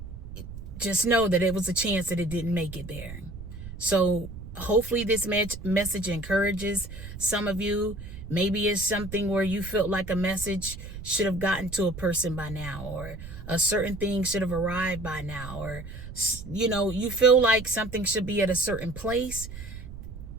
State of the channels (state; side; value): noise; right; rumble, 12 dB below the sound